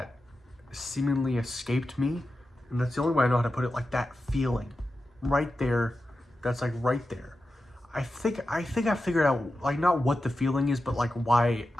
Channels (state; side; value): normal; both; correlation 0.91